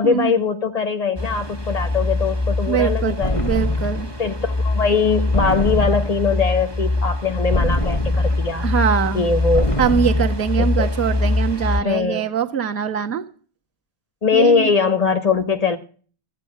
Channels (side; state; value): right; late; 1.2 ms